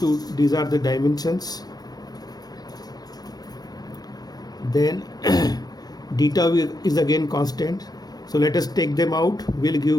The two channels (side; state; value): right; late; 0.19 ms